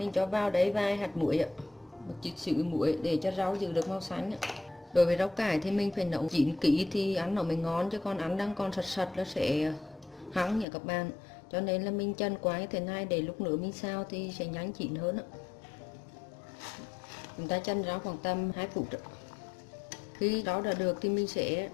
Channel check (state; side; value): drops out; right; at 10.7 s